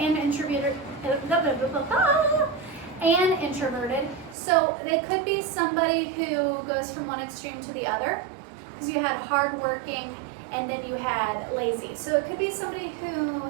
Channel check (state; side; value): drops out; left; at 4.4 s